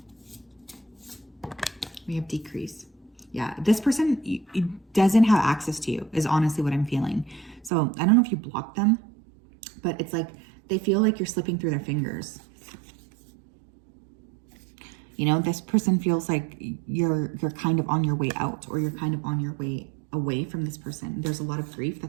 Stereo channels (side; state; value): left; drops out; at 7.7 s